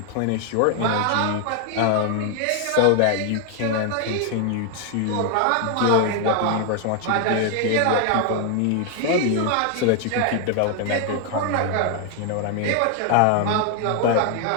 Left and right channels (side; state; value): both; different; correlation 0.00